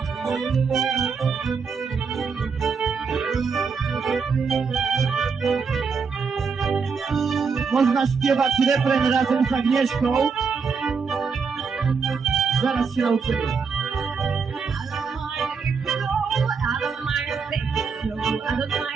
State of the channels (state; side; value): quieter; left; 5.4 dB